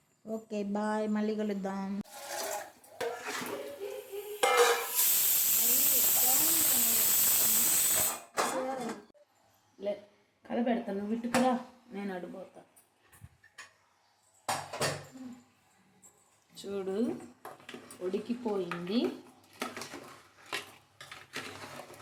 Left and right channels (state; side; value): identical; both; correlation 1.00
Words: ఓకే బాయ్, మళ్ళీ కలుద్దాం. కలపెడతాను, నువ్వు ఇటుకురా, నేను అడిపోతా. చూడు ఉడికిపోయింది.